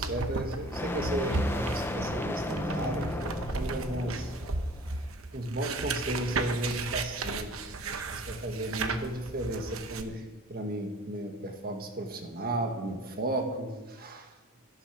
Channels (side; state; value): both; normal; correlation 0.46